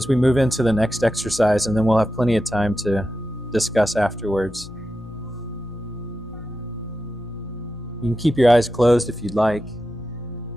we move into the next exercise, and then we'll have plenty of time to discuss afterwards. You can keep your eyes closed if you'd like.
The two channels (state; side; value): normal; both; correlation 0.90